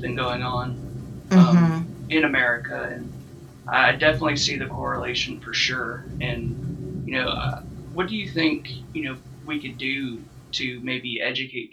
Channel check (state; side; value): identical; both; correlation 1.00